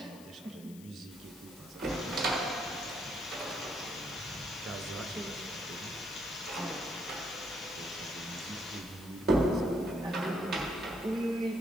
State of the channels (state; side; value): noise; left; hiss, 19 dB below the sound